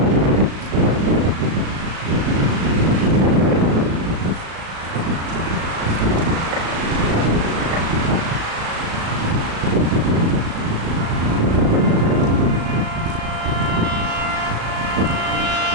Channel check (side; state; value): left; late; 36 ms